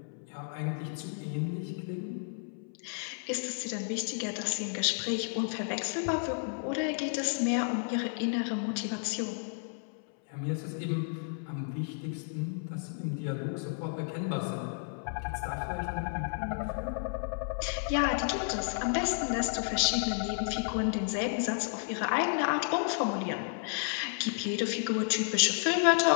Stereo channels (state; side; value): silent; right; 56 dB below the other